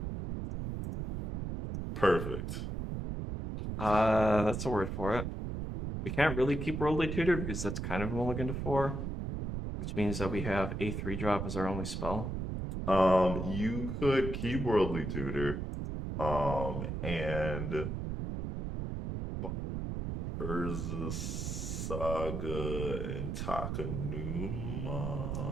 Perfect. That's a word for it. We can't really keep Worldly Tutor because that's kind of a mulligan to 4, which means that we have a 3-drop as our only spell. You could keep Worldly Tutor, and Urza Saga and Takanuma.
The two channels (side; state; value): right; noise; rumble, 4 dB below the sound